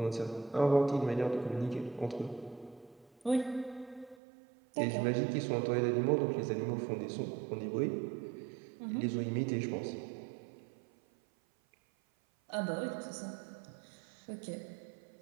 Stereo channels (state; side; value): drops out; left; at 4.2 s